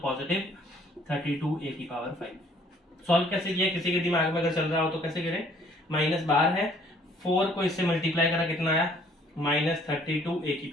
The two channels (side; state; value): both; normal; correlation 0.60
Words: 32a की पावर 5. सॉल्व कैसे किया, किसी के दिमाग में अगर चल रहा हो तो कैसे करें, माइनस बाहर है, 4 को इससे मल्टीप्लाई करा, कितना आया माइनस 32a की